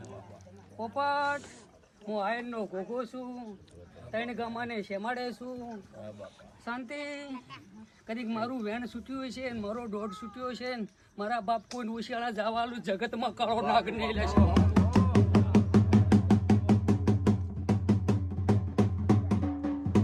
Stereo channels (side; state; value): both; identical; correlation 1.00